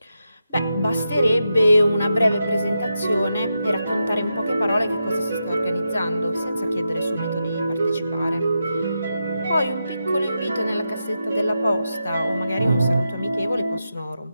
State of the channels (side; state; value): both; inverted; correlation -0.87